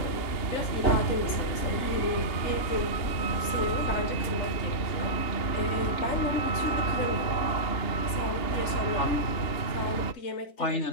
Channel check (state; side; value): late; right; 2.9 ms